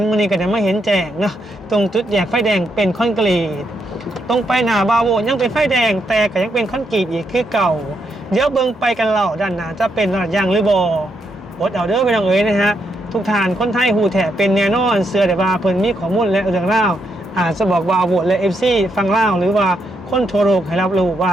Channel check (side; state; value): both; normal; correlation 0.79